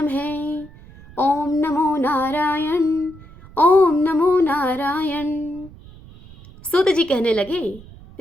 ओम नमो नारायण, ओम नमो नारायण। सूत जी कहने लगे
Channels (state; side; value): noise; right; rumble, 20 dB below the sound